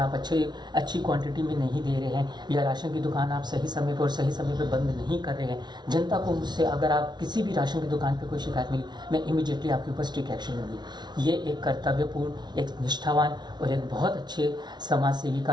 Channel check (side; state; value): left; late; 0.20 ms